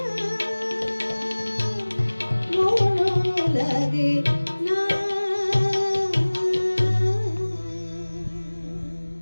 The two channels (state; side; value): inverted; both; correlation -1.00